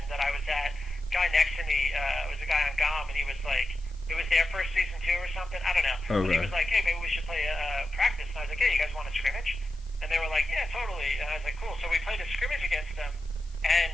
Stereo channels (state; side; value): noise; left; hiss, 28 dB below the sound